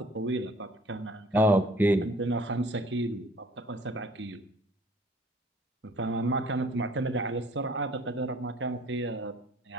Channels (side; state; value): both; normal; correlation 0.54